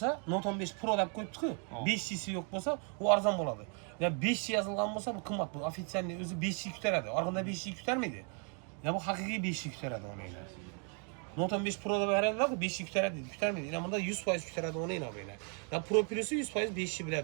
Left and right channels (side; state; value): left; quieter; 39.3 dB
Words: Note 15 Pro deb qo'yibdi-ku, 5'lisi yo'q bo'lsa, u arzon bo'ladi. Ya 5 yozilgan bo'lsa, bu qimmat bu. Ofitsialni o'zi 5 ko'taradi. Orqada 5 ko'tarmaydi. Ya bu haqiqiy 5 ko'taradi o'yinglar. Note 15 Pro deb beradilar, 5 ko'tarmaydi. Yana bunda 100% ko'taradi o'yinglar o'yinglar. Ya Pro Plus'i 100% 5